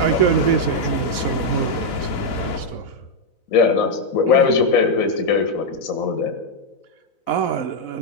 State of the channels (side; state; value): right; late; 4.0 ms